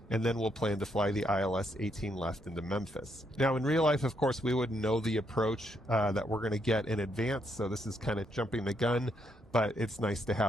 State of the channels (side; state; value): both; normal; correlation 0.76